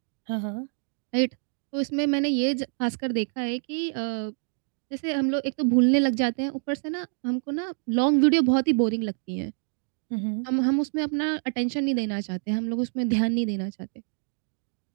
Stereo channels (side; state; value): left; silent; 56 dB below the other